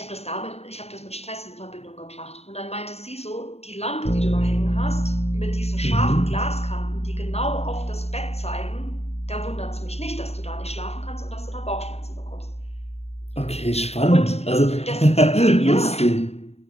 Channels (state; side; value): late; right; 0.30 ms